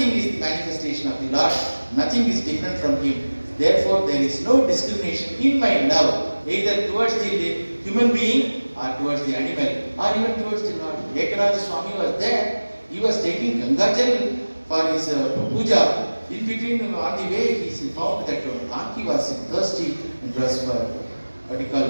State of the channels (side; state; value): both; inverted; correlation -1.00